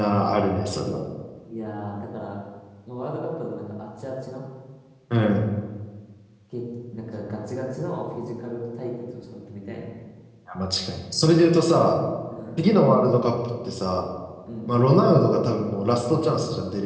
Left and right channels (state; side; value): identical; both; correlation 1.00